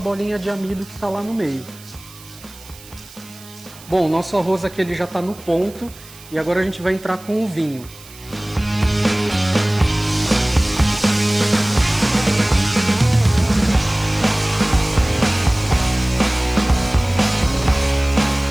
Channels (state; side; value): noise; right; hiss, 20 dB below the sound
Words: de amido que está lá no meio. Bom, o nosso arroz aqui ele já está no ponto e agora a gente vai entrar com o vinho.